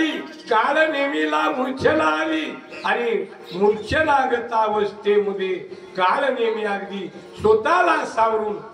कालनेमीला मूर्छना आली आणि मूर्छनागत अवस्थेमध्ये कालनेमी अगदी स्वतःला सावरून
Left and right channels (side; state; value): both; identical; correlation 1.00